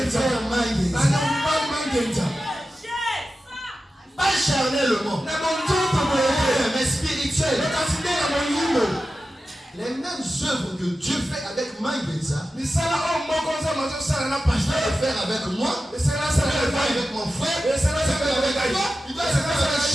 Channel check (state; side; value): normal; both; correlation 0.93